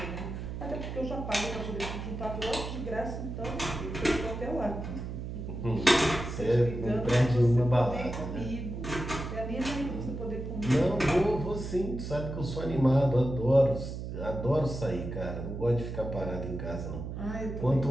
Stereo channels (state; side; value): noise; right; hum, 6 dB below the sound